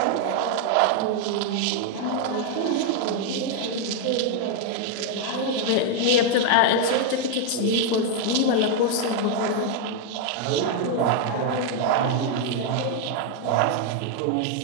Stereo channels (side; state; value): both; different; correlation 0.00